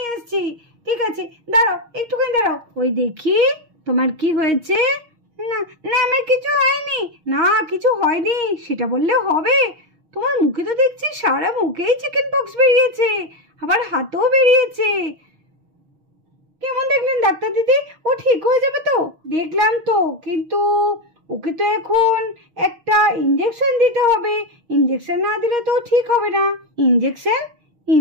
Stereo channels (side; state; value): left; late; 6.4 ms